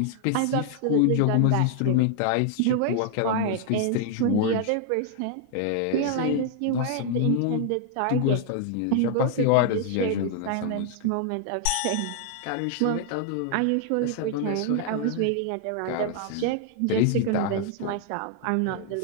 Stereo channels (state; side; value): different; both; correlation 0.00